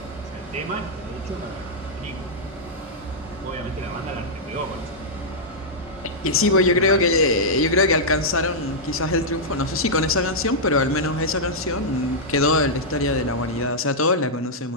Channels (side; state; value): both; normal; correlation -0.07